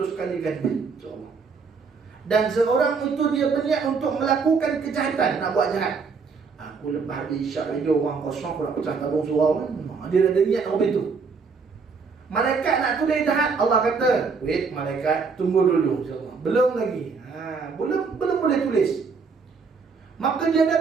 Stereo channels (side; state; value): left; quieter; 5.1 dB